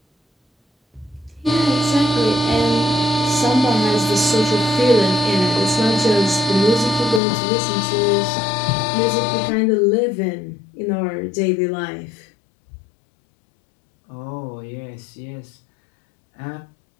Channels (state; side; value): drops out; right; at 7.2 s